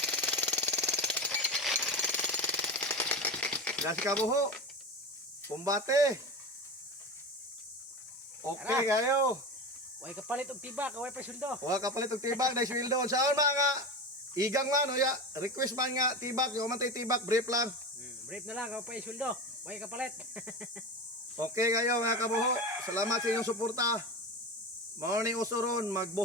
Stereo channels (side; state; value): both; normal; correlation 0.24